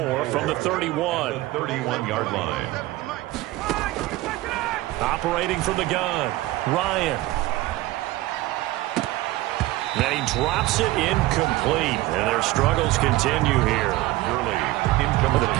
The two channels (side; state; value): left; quieter; 17.9 dB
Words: from the 31. The 31-yard line. Operating from the gun, Ryan. Then he drops it incomplete, and their struggles continue here. The